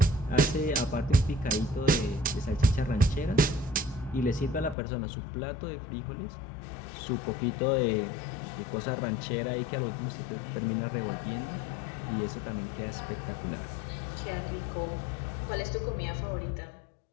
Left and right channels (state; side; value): drops out; right; at 4.8 s